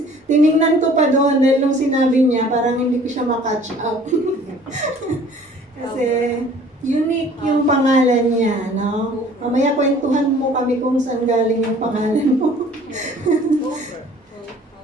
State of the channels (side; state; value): both; normal; correlation 0.52